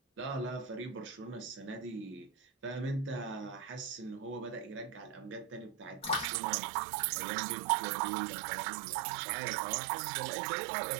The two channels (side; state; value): left; drops out; at 6.2 s